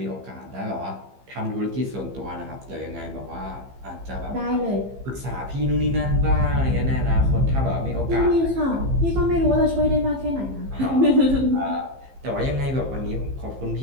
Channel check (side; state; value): left; late; 15 ms